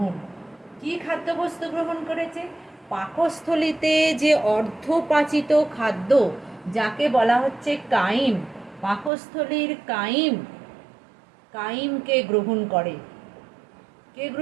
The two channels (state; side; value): drops out; left; at 9.1 s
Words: কি খাদ্যবস্তু গ্রহণ করেছে? পাকস্থলিতে যে অর্ধপাচিত খাদ্য, যাকে বলা হচ্ছে কাইম, পাকস্থলীর কাইম, কাইমকে গ্রহণ করে। কে